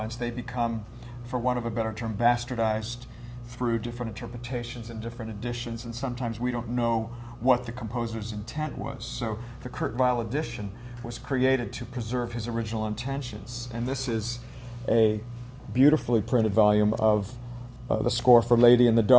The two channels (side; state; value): both; identical; correlation 1.00